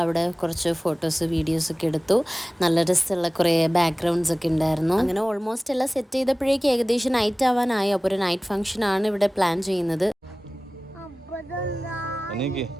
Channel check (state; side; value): normal; both; correlation 0.97